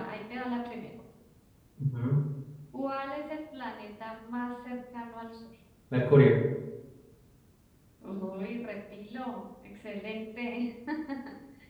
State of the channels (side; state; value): both; identical; correlation 1.00